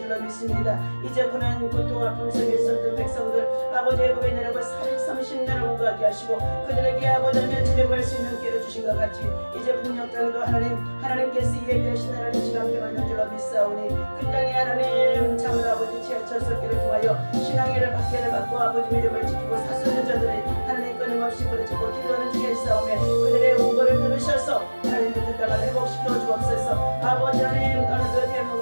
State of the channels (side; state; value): both; inverted; correlation -1.00